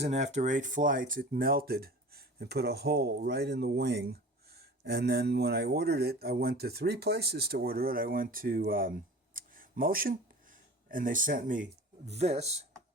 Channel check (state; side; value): normal; both; correlation 0.39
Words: after 8 flights it melted and put a hole right in the wing. And then when I ordered it, I went to 3 places to order it. I went to Motion, and they sent me this,